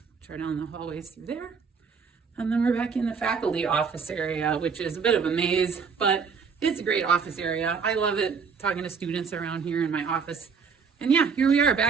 which are down the hallways through there. And then we're back in the faculty office area, which is a bit of a maze, but it's a great office area. I love it, talking to students around here in my office. And yeah, here we are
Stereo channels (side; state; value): left; quieter; 5.7 dB